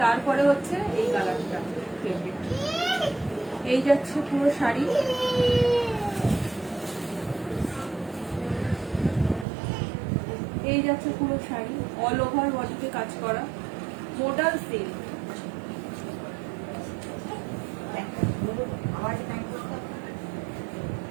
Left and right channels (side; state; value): left; drops out; at 9.5 s